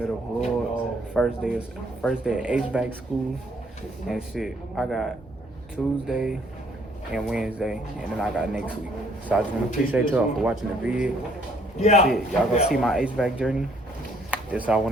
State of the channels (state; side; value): normal; both; correlation 0.64